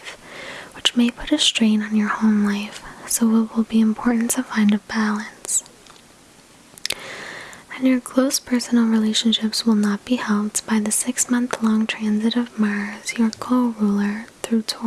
which may put a strain on your home life, so it will be important to find a balance. And your close personal relationships will not be helped by the 6-month-long transit of Mars, your co-ruler, through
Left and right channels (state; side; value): identical; both; correlation 1.00